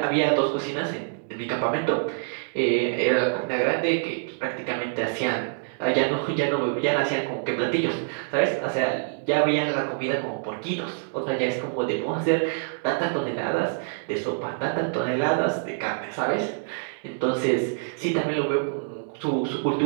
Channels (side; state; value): left; silent; digital silence